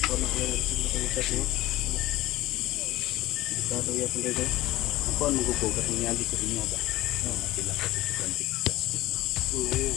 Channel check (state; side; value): quieter; right; 17.0 dB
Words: Ako ang magugugat ng yagi ko rin ba? Sila ko sa kantik. Ngayon